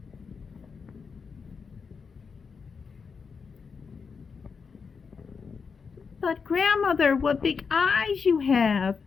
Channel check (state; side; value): quieter; right; 5.6 dB